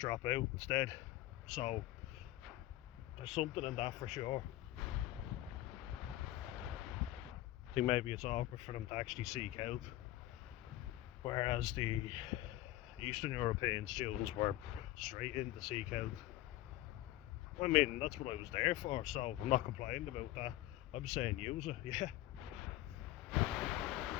out instead. So there's something in that for sure. I think maybe it's awkward for them to actually seek help, whereas the Eastern European students were straight in to seek help. I mean, that's what I was there for, so I'm not complaining about that. I'm saying use it, yeah.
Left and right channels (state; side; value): quieter; right; 15.8 dB